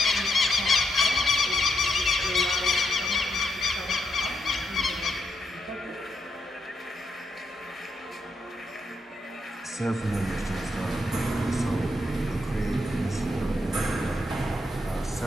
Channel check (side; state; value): both; normal; correlation 0.80